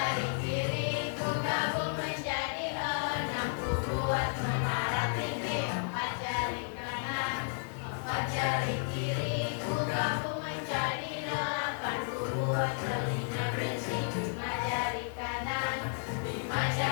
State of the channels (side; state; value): right; silent; digital silence